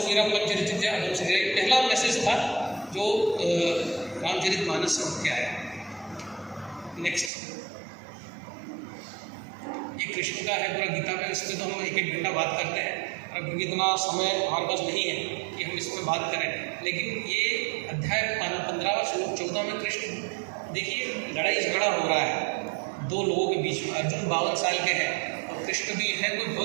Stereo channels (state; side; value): drops out; left; at 7.3 s